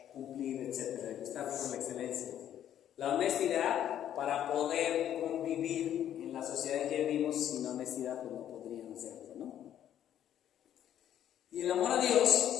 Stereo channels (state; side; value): quieter; right; 10.7 dB